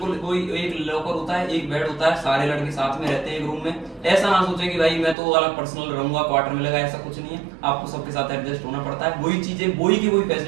कोई एक लॉकर होता है, एक बेड होता है, सारे लड़के साथ में रहते हैं एक रूम में। ऐसा ना सोचे कि भाई मैं तो अलग पर्सनल रहूंगा, क्वार्टर में लगा, ऐसा कुछ नहीं है। आपको सबके साथ एडजस्ट होना पड़ता है। वही चीजें, वही की वही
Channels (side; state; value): left; drops out; at 5.2 s